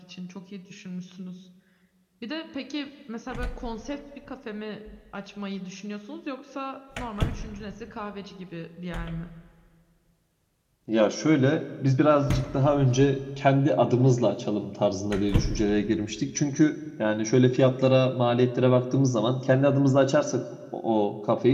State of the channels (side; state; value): both; identical; correlation 1.00